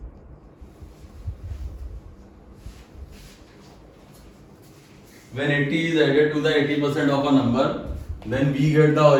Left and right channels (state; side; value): identical; both; correlation 1.00